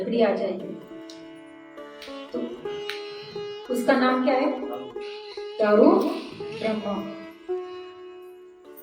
आ जाएगी तो उसका नाम क्या है? दारू ब्रह्मा।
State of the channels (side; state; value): both; identical; correlation 1.00